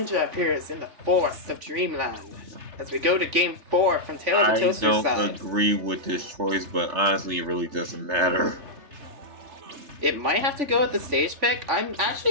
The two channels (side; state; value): left; late; 3.3 ms